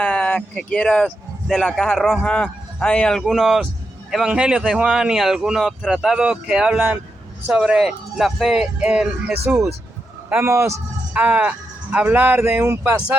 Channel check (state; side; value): normal; both; correlation 0.86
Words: que quieras de la caja roja. Hay algunos evangelios de Juan y algunos tratados que hablan sobre la fe en Jesús. Vamos a hablar de un